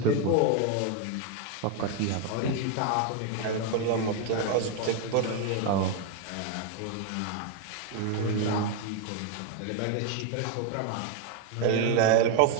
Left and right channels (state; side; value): different; both; correlation 0.01